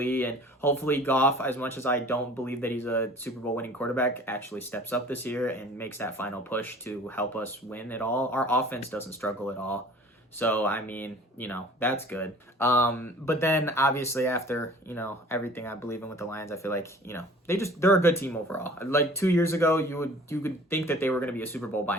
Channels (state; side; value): normal; both; correlation 0.47